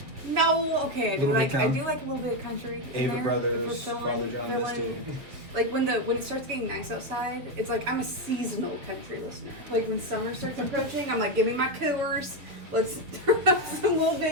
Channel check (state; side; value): late; left; 7.0 ms